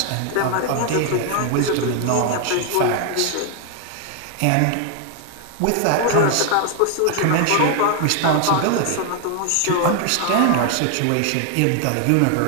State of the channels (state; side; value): different; both; correlation 0.00